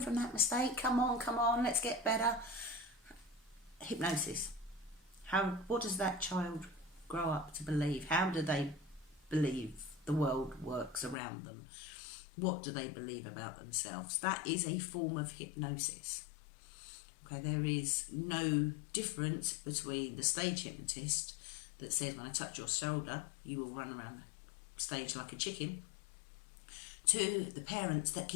from that mistake. Come on. Let's get better. Hypnosis. What does that child grow up to believe? How do they believe the world works around them? What do they believe about themselves? That is a form of hypnosis. Okay, there is no difference between the stage hypnotist that says, when I touch your shoulder, you will run around the stage like a chicken, to the parents that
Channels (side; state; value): right; drops out; at 11.2 s